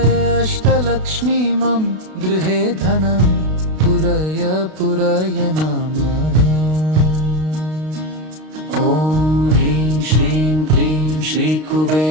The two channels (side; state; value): left; late; 32 ms